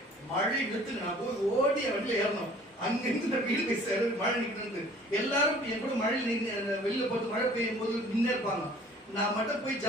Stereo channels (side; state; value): both; normal; correlation 0.52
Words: மழை நிறுத்துங்க, நான் போய் ஓடி வண்டியில ஏறணும். அங்கிருந்து நான் வீடு போய் சேர மழை நிற்கிறது. எல்லாரும் என் கூட மழையில் வெளியில போட்டு மழை பெய்யும் போது நின்று இருப்பாங்க. நான் மட்டும் போய்